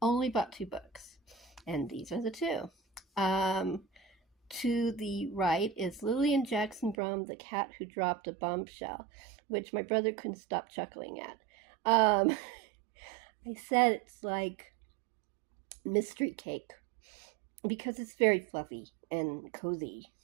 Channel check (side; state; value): left; drops out; at 7.0 s